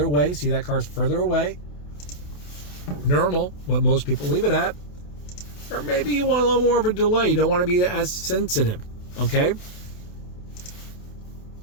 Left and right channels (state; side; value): late; right; 28 ms